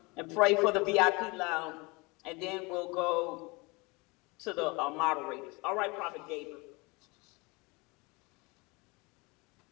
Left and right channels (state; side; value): quieter; right; 26.6 dB